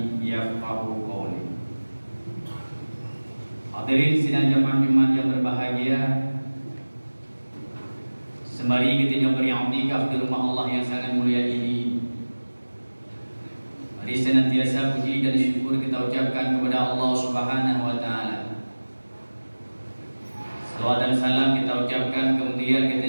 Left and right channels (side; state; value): both; inverted; correlation -1.00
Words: yafqahu qawli. Hadirin sidang jamaah Jumat yang berbahagia, sembari kita beriktikaf di rumah Allah yang sangat mulia ini, mari senantiasa puji dan syukur kita ucapkan kepada Allah Subhanahu wa taala. Salawat dan salam kita ucapkan, kemudian